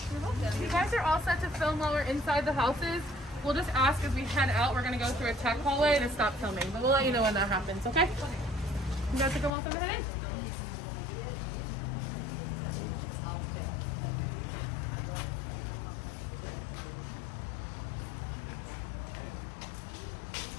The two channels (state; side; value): drops out; right; at 9.5 s